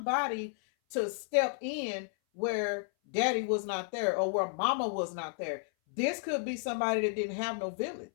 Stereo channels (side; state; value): right; silent; 56 dB below the other